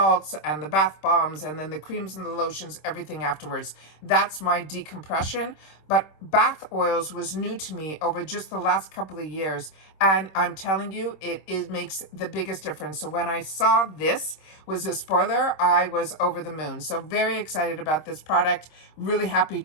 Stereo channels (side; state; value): right; late; 26 ms